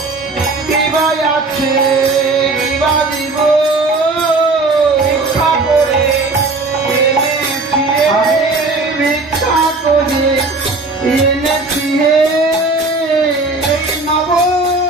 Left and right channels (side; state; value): left; quieter; 3.4 dB